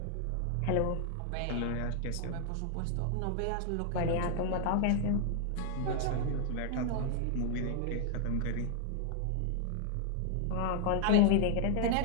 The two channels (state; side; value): different; both; correlation 0.00